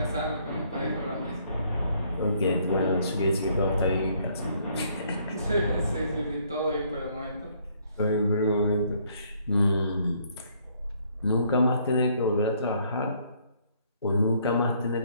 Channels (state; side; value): inverted; both; correlation -0.66